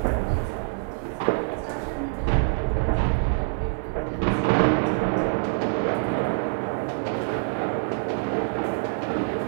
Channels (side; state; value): left; silent; 60 dB below the other